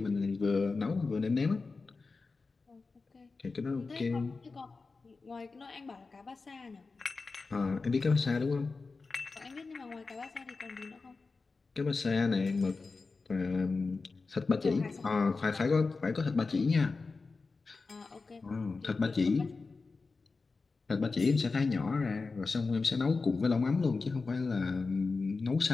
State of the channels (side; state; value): right; quieter; 4.1 dB